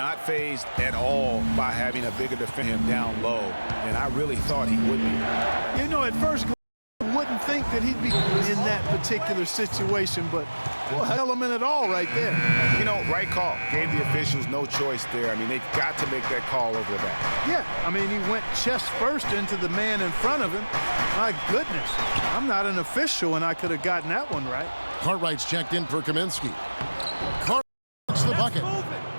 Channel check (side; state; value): both; inverted; correlation -1.00